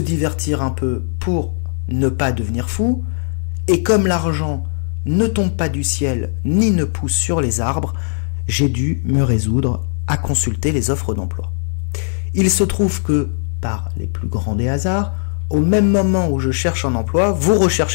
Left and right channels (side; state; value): right; silent; 67 dB below the other